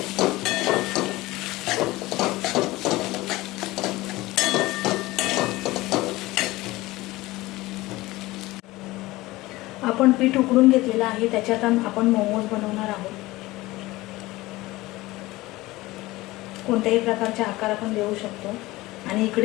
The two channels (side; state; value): right; quieter; 19.3 dB